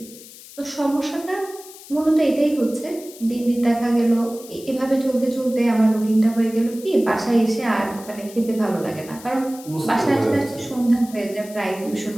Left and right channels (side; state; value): left; noise; hiss, 18 dB below the sound